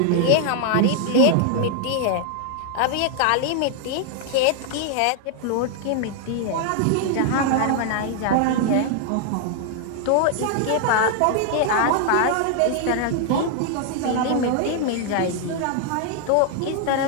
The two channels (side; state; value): both; different; correlation 0.00